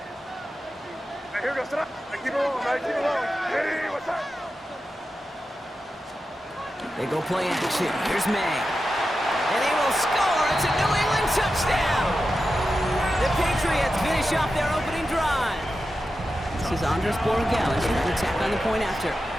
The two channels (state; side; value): normal; both; correlation 0.91